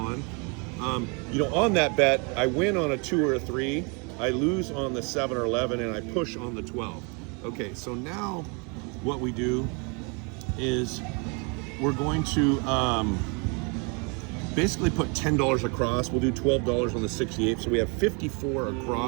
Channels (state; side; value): quieter; left; 33.3 dB